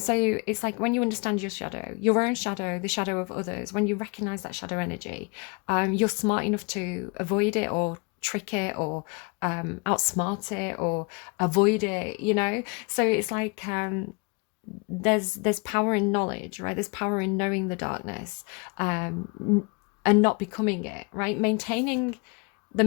it's like when you understand your shadow, your own shadow, the shadow of others, when you recognize that shadow energy, you're smart enough to avoid it or trick it or outsmart it or avoid it, so it's like there's power in knowledge, right? There's power in knowing the darkness, and not becoming it, right? Maintaining the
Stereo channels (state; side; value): quieter; right; 31.3 dB